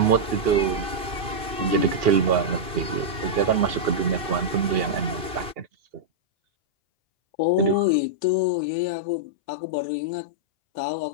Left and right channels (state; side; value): late; left; 2.6 ms